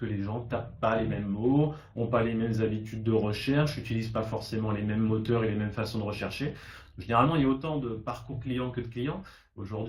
les gens tapent pas les mêmes mots, ont pas les mêmes habitudes de recherche, n'utilisent pas forcément les mêmes moteurs et les mêmes façons de rechercher. Généralement, il y a autant de parcours clients que de clients.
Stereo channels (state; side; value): identical; both; correlation 1.00